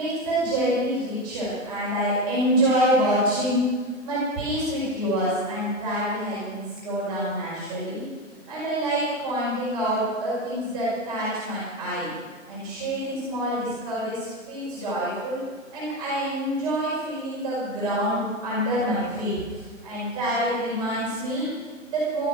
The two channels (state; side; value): normal; both; correlation 0.18